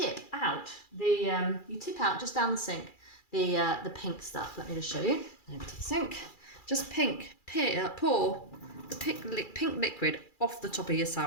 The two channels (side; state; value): right; late; 2.4 ms